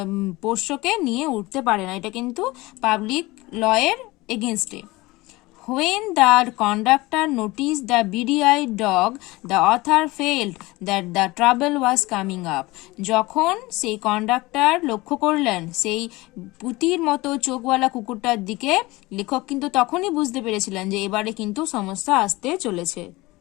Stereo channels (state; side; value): quieter; right; 21.2 dB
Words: পোষ্যকে নিয়ে উঠতে পারে না, এটা কিন্তু পাবলিক লয়ের এগেনস্টে। When the conductor noticed the beady-eyed dog, the author felt that the trouble was coming up. যখন সেই কন্ডাক্টর লক্ষ্য করলেন সেই পুতির মতো চোখওয়ালা কুকুরটার দিকে, লেখক কিন্তু তখনই বুঝতে পেরেছিলেন যে এবারে কিন্তু সমস্যা আসতে চলেছে।